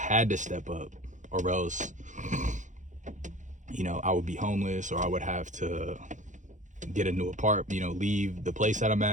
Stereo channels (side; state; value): left; late; 0.36 ms